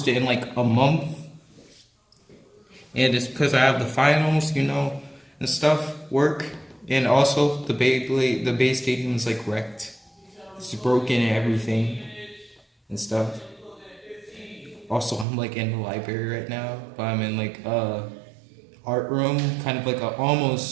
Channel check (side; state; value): left; drops out; at 15.2 s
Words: in like a month. And it's because I have the finals, and stuff, work. And also the Beyblade, the Bay Stadium is like wrecked. It's broken and everything and stuff. Also, I'm like in the library right now, but I'm in like art room, kind of like